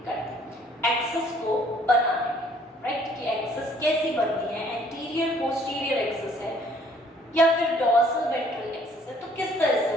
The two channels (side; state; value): both; normal; correlation 0.60